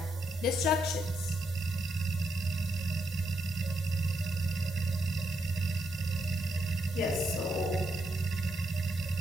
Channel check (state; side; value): normal; both; correlation 0.79